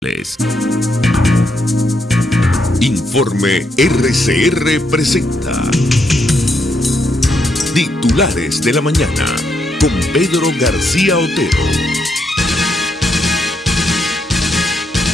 titulares. Informe RCR presenta Titulares de la Mañana con Pedro García Otero.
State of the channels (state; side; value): normal; both; correlation 0.78